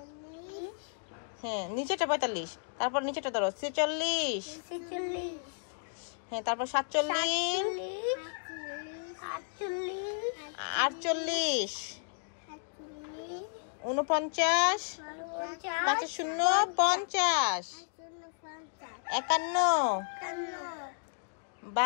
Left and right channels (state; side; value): silent; right; digital silence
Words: হ্যাঁ, নিচেটা 45। তারপর নিচেটা ধরো 46, হ্যাঁ, তারপর 47, 48, 49, 5 শূন্য 50, 51,